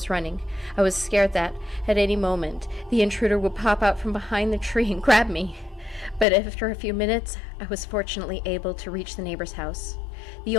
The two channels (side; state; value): right; drops out; at 6.2 s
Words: running, I was scared that, at any moment, the intruder would pop out from behind the tree and grab me. But after a few minutes, I was fortunately able to reach the neighbor's house. The